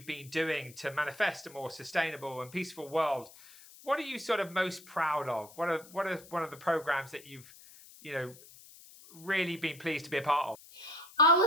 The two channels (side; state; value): left; noise; hiss, 21 dB below the sound